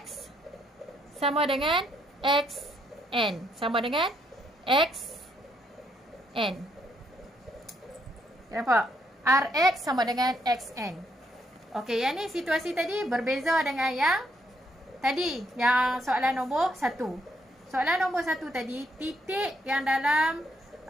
sama dengan XN. Sama dengan XN. Nampak? RX sama dengan XN. Okey, yang ni situasi tadi berbeza dengan yang tadi, yang soalan nombor 1. Soalan nombor 1 tadi, titik yang dalam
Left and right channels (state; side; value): normal; both; correlation 0.73